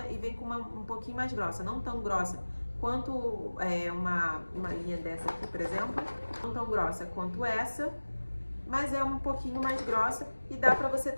e vem com uma um pouquinho mais grossa, não tão grossa quanto uma linha dessa aqui, por exemplo, não tão grossa quanto essa, mas é um pouquinho mais grossa e dá para você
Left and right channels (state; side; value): inverted; both; correlation -1.00